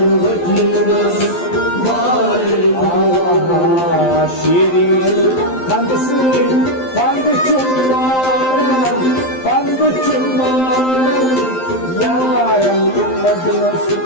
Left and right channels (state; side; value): late; right; 12 ms